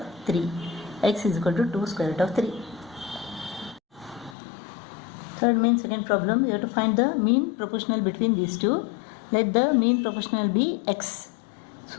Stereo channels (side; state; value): right; drops out; at 4.4 s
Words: 3. X is equal to 2 square root of 3. Third main second problem, you have to find the mean proportional between these two. Let the mean proportional be x.